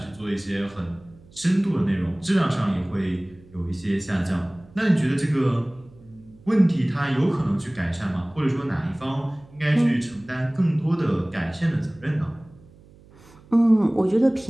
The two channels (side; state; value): right; noise; hum, 25 dB below the sound